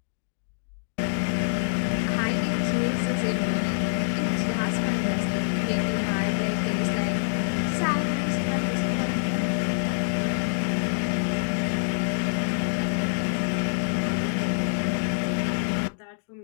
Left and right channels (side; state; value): right; silent; digital silence